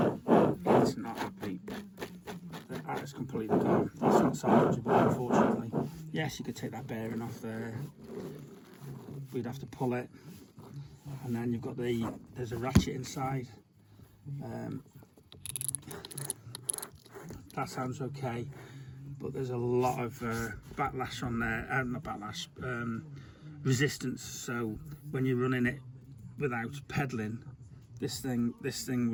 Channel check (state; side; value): identical; both; correlation 1.00